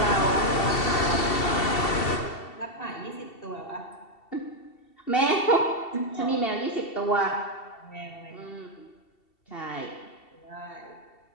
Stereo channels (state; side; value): late; right; 2.7 ms